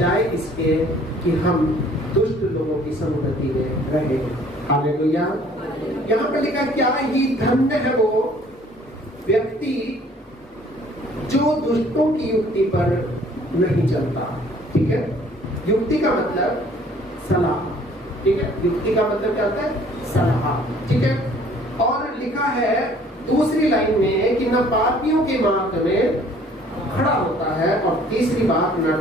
इसके कि हम दुष्ट लोगों की संगति में रहे। हालेलुया। यहाँ पे लिखा क्या ही धन्य है वो व्यक्ति जो दुष्टों की युक्ति पर नहीं चलता। ठीक है, युक्ति का मतलब सलाह। ठीक है, युक्ति का मतलब क्या होता है? सलाह। ठीक है, और लिखा है दूसरी लाइन में कि न पापियों के मार्ग में खड़ा होता है, और तीसरी बात न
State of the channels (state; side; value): normal; both; correlation 0.56